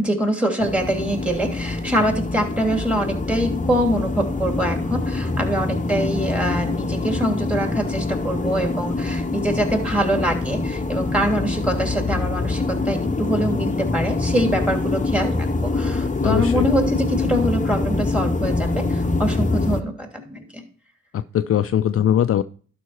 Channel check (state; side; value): normal; both; correlation 0.68